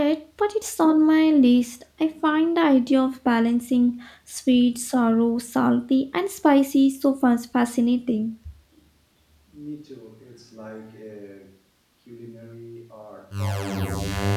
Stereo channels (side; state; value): both; identical; correlation 1.00